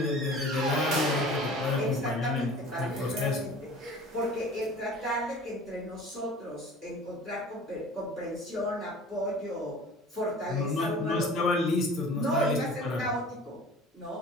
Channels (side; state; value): both; normal; correlation 0.43